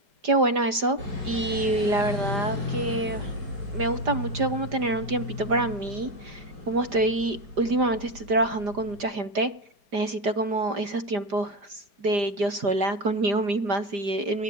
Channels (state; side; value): late; left; 5.0 ms